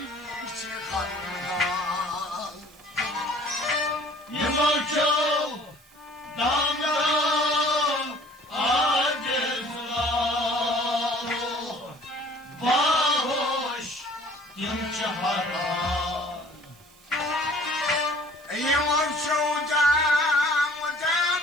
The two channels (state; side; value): noise; right; hiss, 29 dB below the sound